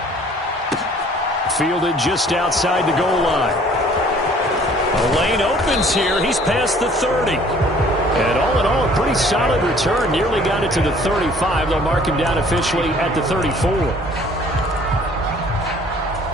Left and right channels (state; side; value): normal; both; correlation 0.55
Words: Fielded just outside the goal line. The lane opens here. He's past the 30. And all in all, a pretty solid return. Nearly got it to the 35. They'll mark him down officially at the 34.